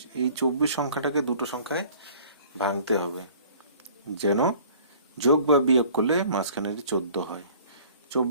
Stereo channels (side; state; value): both; inverted; correlation -0.50